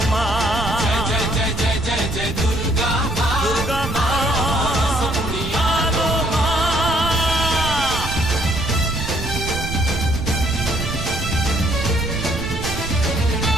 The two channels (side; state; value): right; noise; rumble, 6 dB below the sound